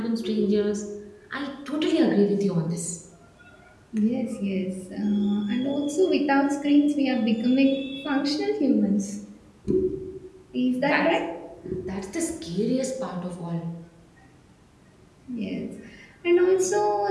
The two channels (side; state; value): both; identical; correlation 1.00